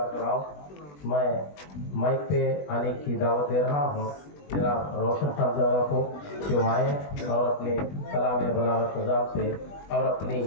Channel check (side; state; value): right; late; 20 ms